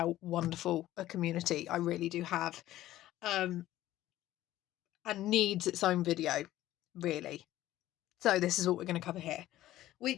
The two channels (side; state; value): right; quieter; 14.6 dB